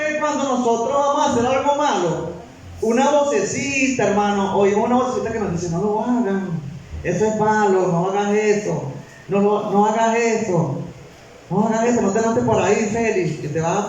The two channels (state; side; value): identical; both; correlation 1.00